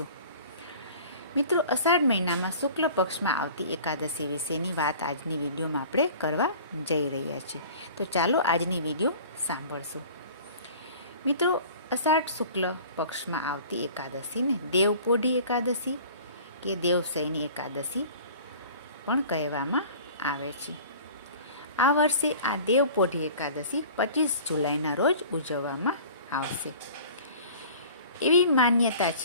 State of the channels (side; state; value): both; inverted; correlation -0.44